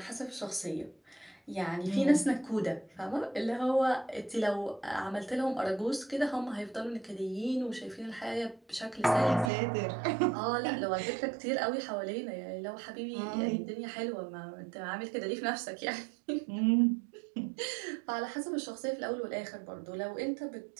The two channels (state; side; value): drops out; left; at 9.5 s